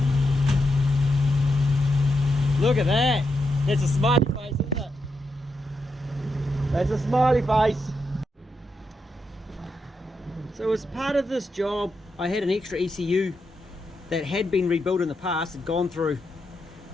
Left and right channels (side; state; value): both; normal; correlation 0.84